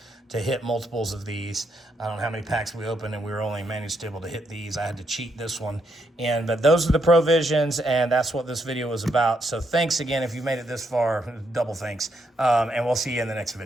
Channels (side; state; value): both; normal; correlation 0.78